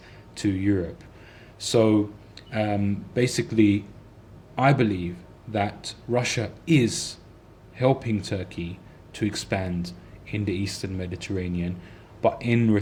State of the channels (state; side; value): identical; both; correlation 1.00